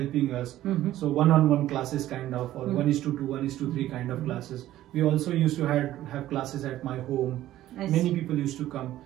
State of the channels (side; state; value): left; quieter; 14.0 dB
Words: us. So one-on-one classes kind of, or 1:2, 1:3 kind of classes. We also used to have classes at my home. Many people used to come,